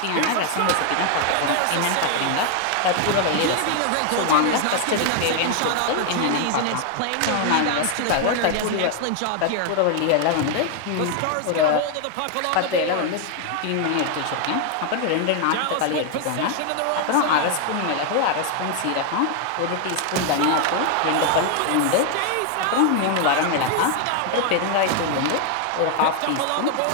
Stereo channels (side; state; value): both; different; correlation 0.00